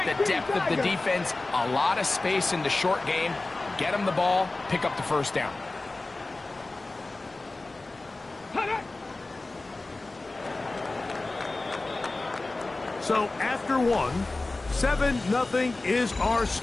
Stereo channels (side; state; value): right; quieter; 3.1 dB